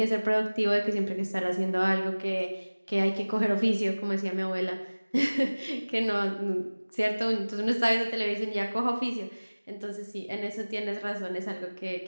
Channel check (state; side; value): inverted; both; correlation -1.00